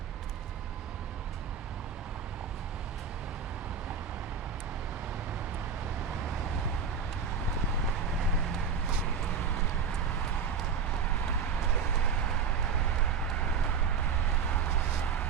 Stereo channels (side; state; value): left; quieter; 6.1 dB